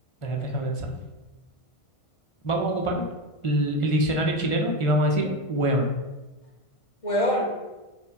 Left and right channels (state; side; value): late; right; 1.5 ms